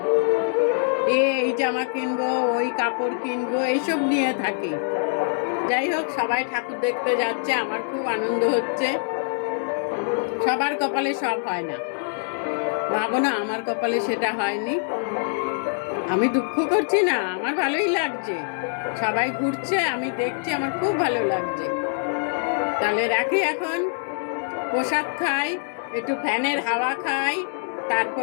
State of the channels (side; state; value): right; silent; 62 dB below the other